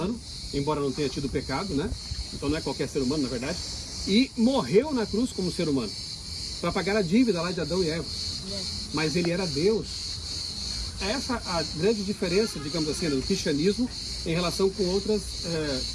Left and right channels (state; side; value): identical; both; correlation 1.00